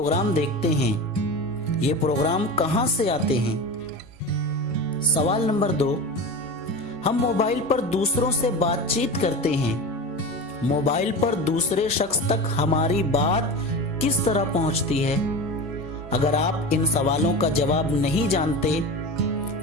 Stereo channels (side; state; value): both; normal; correlation 0.28